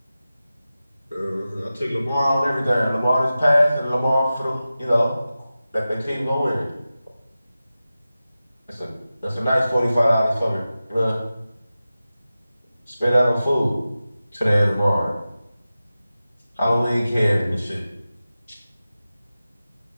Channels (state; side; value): inverted; both; correlation -0.95